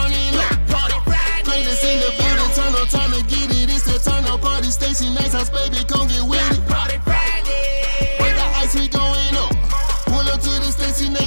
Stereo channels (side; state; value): both; inverted; correlation -1.00